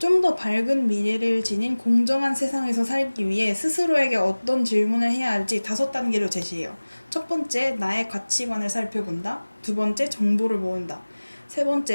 더 밝은 미래를 지닌 공정한 세상에서 살기 위해 스스로에게 어떤 질문을 해야 할지 5단계로 제시해요. 첫 번째, 나의 가치관을 살펴본다. 두 번째, 정보를 모은다. 세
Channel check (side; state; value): both; inverted; correlation -1.00